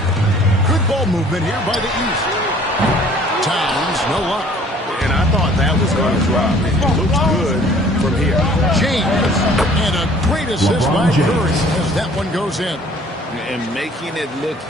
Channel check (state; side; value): normal; both; correlation 0.54